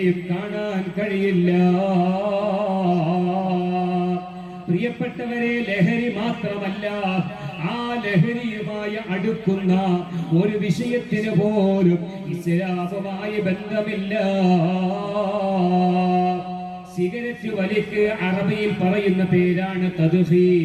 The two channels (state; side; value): identical; both; correlation 1.00